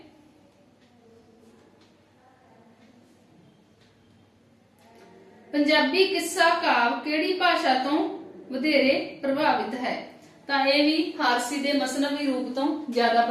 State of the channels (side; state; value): both; identical; correlation 1.00